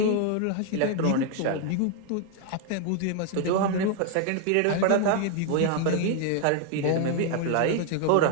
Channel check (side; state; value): both; different; correlation 0.00